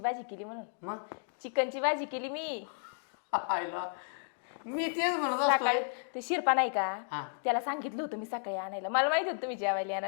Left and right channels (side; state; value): right; silent; digital silence